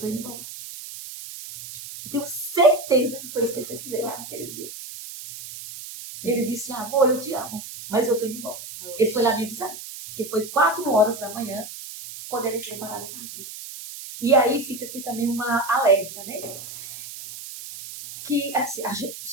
indo embora. Eu tenho certeza que foi isso que ele fez fazer lá naquele dia. Ele disse, amor, eu te amo, mas eu tô indo embora. Ele foi lá me avisar, porque foi 4 horas da manhã, quando ele entrou em parada cardíaca. E aí fica aqui também uma alerta, né? que assim,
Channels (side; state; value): right; noise; hiss, 12 dB below the sound